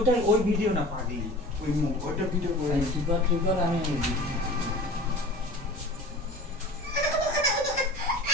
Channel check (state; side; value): normal; both; correlation 0.39